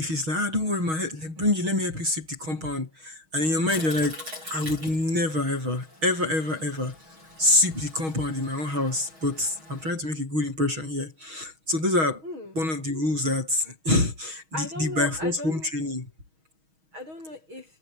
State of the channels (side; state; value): left; late; 6.3 ms